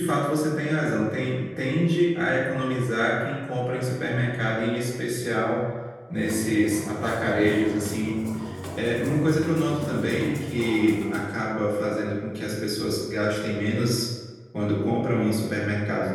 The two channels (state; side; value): identical; both; correlation 1.00